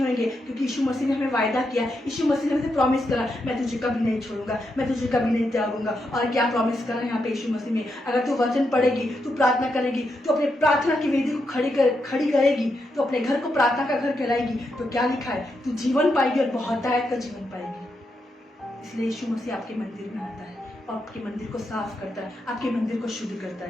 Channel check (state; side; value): normal; both; correlation 0.83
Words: होंगे, क्योंकि यीशु मसीह ने हमें वायदा किया। यीशु मसीह ने हमें प्रॉमिस करा, मैं तुझे कभी नहीं छोड़ूंगा, मैं तुझे कभी नहीं त्यागूंगा। और क्या प्रॉमिस करा यहाँ पे यीशु मसीह में? अगर तू वचन पढ़ेगी, तू प्रार्थना करेगी, तो अपने प्रार्थना की वेदी को खड़ी करेगी, तो अपने घर को प्रार्थना का घर कहलाएगी। तो क्या लिखा है? तू जीवन पाएगी और बहुतायत का जीवन पाएगी। इसलिए यीशु मसीह आपके मंदिर में आता है और आपके मंदिर को साफ करता है, आपके मंदिर को शुद्ध करता